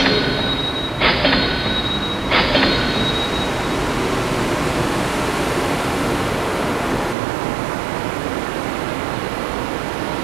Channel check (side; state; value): left; drops out; at 7.2 s